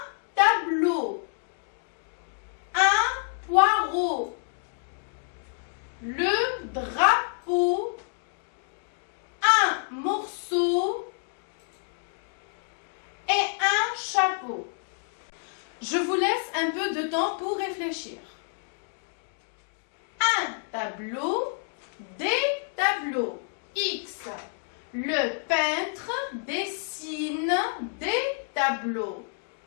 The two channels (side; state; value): right; silent; 59 dB below the other